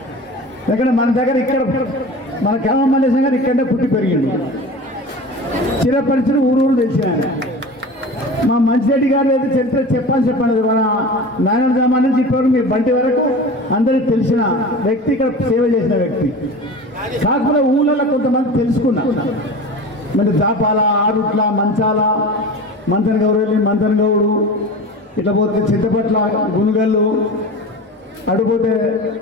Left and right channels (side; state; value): both; normal; correlation 0.34